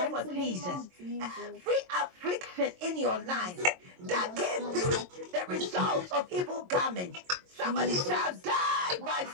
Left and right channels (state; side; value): late; left; 22 ms